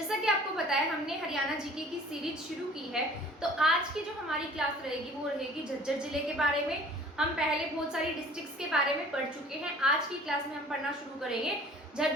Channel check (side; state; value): both; normal; correlation 0.50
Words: कि आपको पता है, हमने हरियाणा जीके की सीरीज शुरू की है। तो आज की जो हमारी क्लास रहेगी वो रहेगी झज्जर जिले के बारे में। हम पहले बहुत सारी डिस्ट्रिक्ट्स के बारे में पढ़ चुके हैं। आज की क्लास में हम पढ़ना शुरू करेंगे